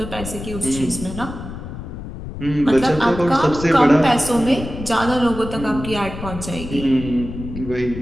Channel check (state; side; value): noise; left; rumble, 10 dB below the sound